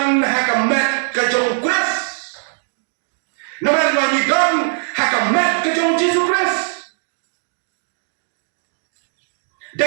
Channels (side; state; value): left; silent; 66 dB below the other